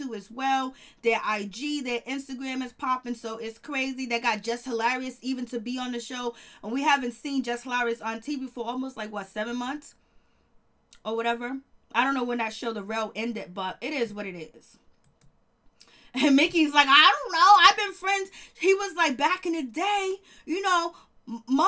as well. Their IG, their Instagram is popping, so it's crazy. They got Just Hilarious even to be on the show, and we haven't seen Just Hilarious on TV for almost like 7 months or whatever. I don't know when that show The Real ended, but it is what it is. And Mickey's like, I don't know. I've been friends. He was like, back in the day, you know,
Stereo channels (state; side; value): identical; both; correlation 1.00